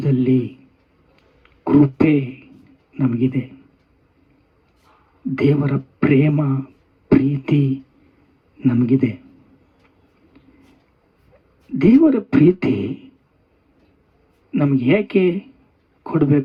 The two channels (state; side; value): identical; both; correlation 1.00